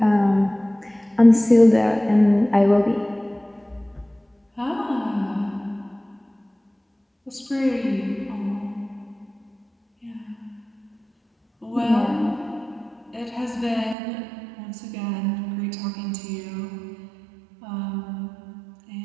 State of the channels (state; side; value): drops out; left; at 14.0 s